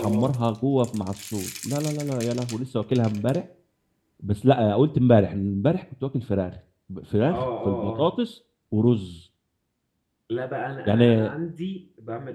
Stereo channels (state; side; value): identical; both; correlation 1.00